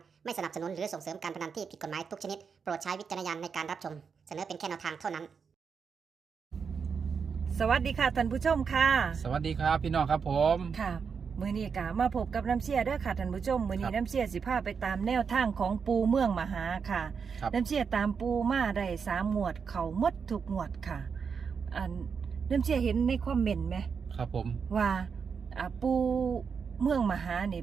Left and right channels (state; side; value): quieter; left; 6.0 dB